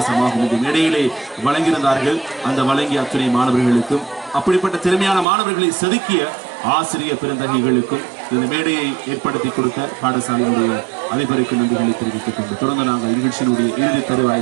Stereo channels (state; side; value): drops out; left; at 5.2 s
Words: இந்த மேடையிலே வழங்கியிருந்தார்கள். அந்த வழங்கிய அத்துணை மாணவர்களுக்கும் அப்படிப்பட்ட திறமையான மாணவர்களை செதுக்கிய ஆசிரியர் பெருந்தகைகளுக்கும் இந்த மேடையை ஏற்படுத்தி கொடுத்த பாடசாலையினுடைய அதிபருக்கு நன்றிகளை தெரிவித்துக் கொண்டு தொடர்ந்து நாங்கள் நிகழ்ச்சியினுடைய இறுதி